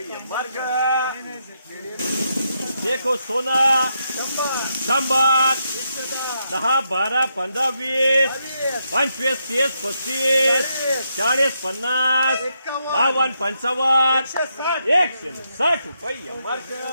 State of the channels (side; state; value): both; inverted; correlation -0.81